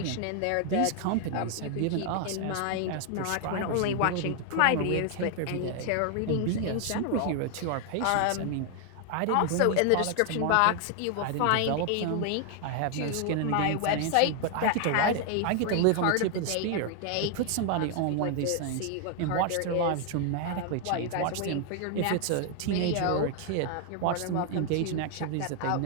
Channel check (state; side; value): different; both; correlation 0.00